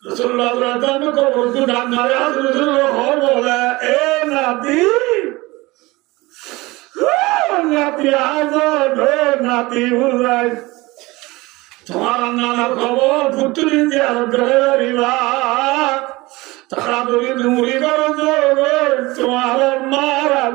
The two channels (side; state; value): left; quieter; 21.6 dB